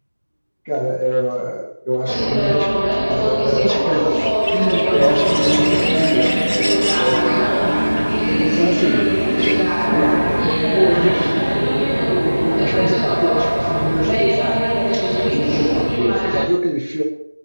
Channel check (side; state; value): both; inverted; correlation -1.00